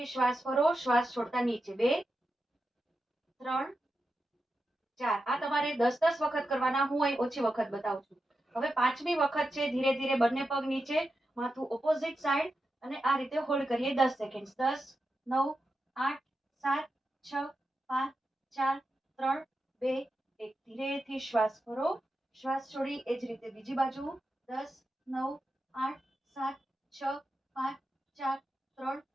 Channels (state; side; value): normal; both; correlation 0.89